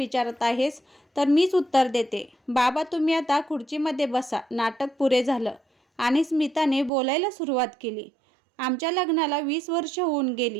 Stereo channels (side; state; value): left; drops out; at 6.9 s